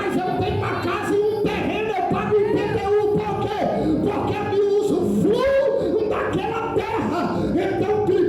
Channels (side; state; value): both; identical; correlation 1.00